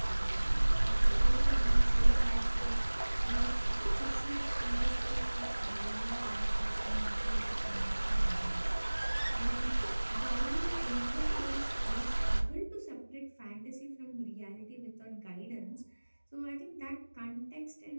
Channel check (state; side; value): inverted; both; correlation -1.00